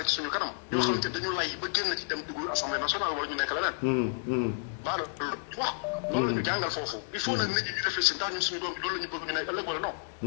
ci suñu kanam. yoo xamante dañu lay ba génn ci dem dugg assemblée nationale wala ñu nekk leneen. baalo loolu wax loolu la ñu jàngal foofu. il faut nag nit ñi ñu réfléchir ndax ñun suñu doom bi loolu la ñu bëgg ñu nekk ëllëg wala non.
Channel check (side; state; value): right; silent; 57 dB below the other